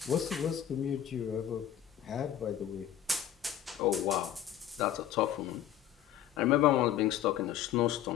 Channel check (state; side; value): quieter; right; 10.7 dB